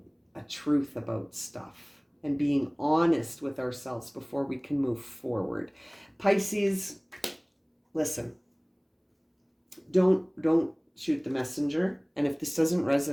a truth about stuff and being honest with ourselves before we can move forward. Pisces, listen, don't shoot the messenger. And if this doesn't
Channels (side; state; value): both; identical; correlation 1.00